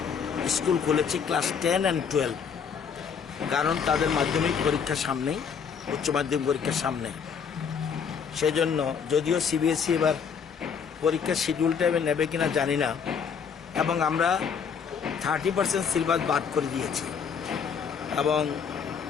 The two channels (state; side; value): quieter; right; 6.7 dB